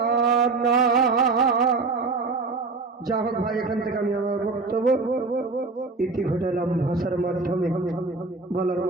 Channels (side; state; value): left; quieter; 4.0 dB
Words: যা হোক ভাই, এখান থেকে আমি আমার বক্তব্য ইতি ঘটালাম। ভাষার মাধ্যমে, বলার